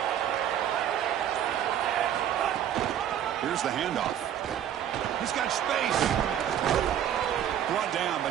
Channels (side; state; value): left; quieter; 10.1 dB